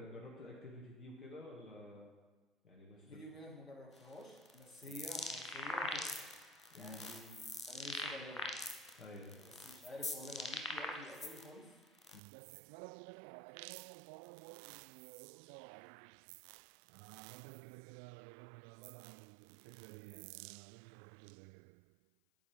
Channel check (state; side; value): drops out; left; at 12.2 s